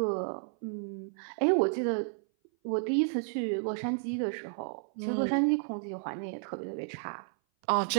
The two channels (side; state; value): left; silent; 57 dB below the other